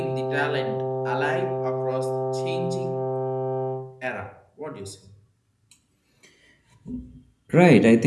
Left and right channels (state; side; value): identical; both; correlation 1.00